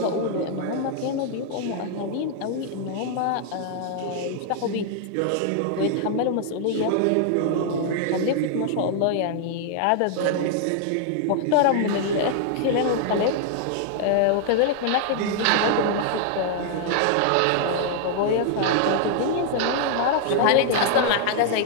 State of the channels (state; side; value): different; both; correlation 0.00